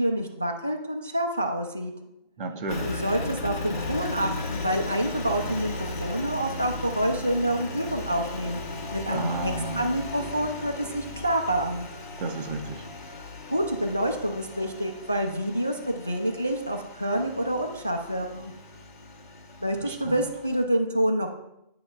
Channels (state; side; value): inverted; both; correlation -0.73